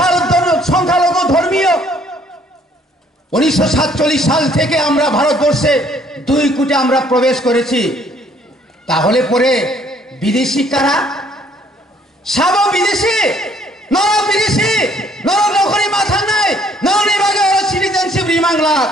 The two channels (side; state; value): both; normal; correlation 0.62